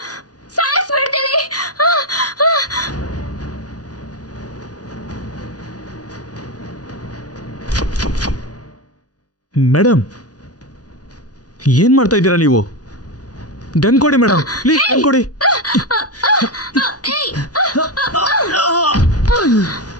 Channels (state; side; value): late; right; 0.68 ms